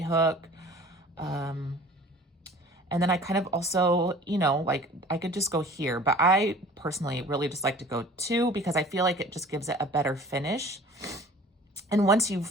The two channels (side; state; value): both; normal; correlation 0.46